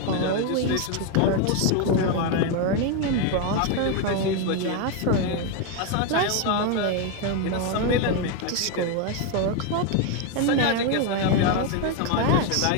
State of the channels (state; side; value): different; both; correlation 0.02